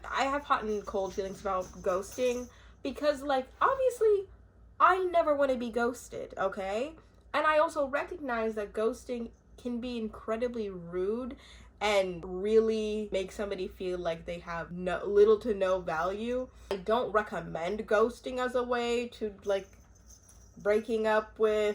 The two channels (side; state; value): both; identical; correlation 1.00